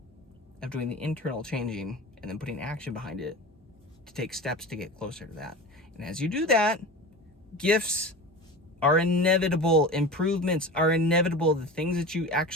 of doing the internal changing and then putting action behind it to take steps to get closer to that. And as you do that, gifts are inevitable, improvements are inevitable, the things that you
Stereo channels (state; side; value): normal; both; correlation 0.32